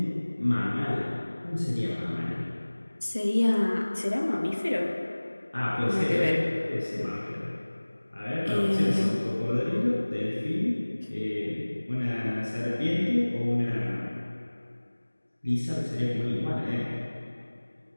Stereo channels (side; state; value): both; inverted; correlation -1.00